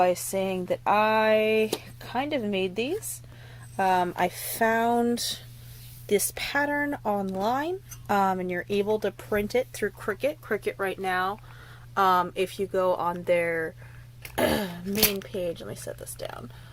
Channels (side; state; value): both; identical; correlation 1.00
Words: saying that I kind of made these. I found this pattern online, and you're able to print it through Cricut. Cricut right now, if you go on their main page, let me set this down.